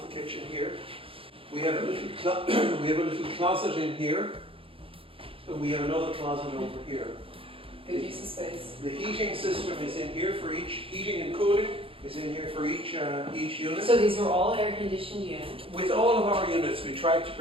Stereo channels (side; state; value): left; late; 0.27 ms